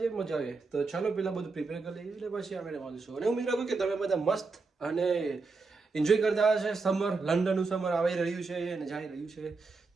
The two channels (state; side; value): quieter; left; 4.1 dB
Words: મજા આવે. તો ચાલો પહેલાં બધું પ્રિપેર કરી લઈએ એટલે પછી આપણે મળીશું. અને ઉમેદ રાખું કે તમે બધા મસ્ત અને એન્જોય કરતા હશે. સમર, લંડનનું સમર આવી રહ્યું છે અને જઈ રહ્યું છે,